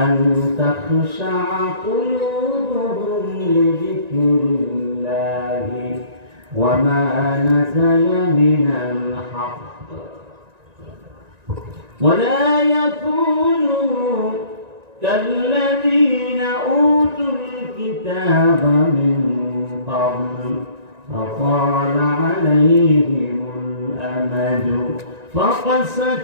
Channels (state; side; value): late; left; 1.9 ms